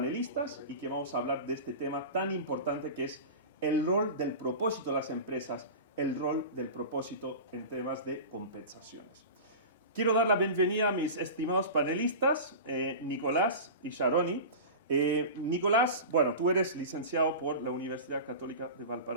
y que vamos a hablar de este tema tan importante que es el rol del propósito de las empresas, el rol del propósito en temas de compensaciones. Quiero dar la bienvenida a mis estimados panelistas, Nicolás y Sharoni. Nicolás, bueno, tú eres licenciado por la Universidad Católica de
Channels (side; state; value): both; inverted; correlation -0.30